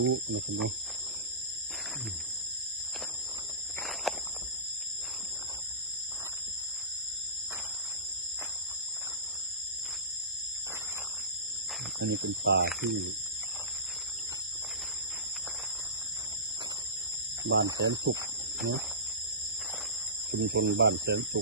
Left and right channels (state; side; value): normal; both; correlation -0.20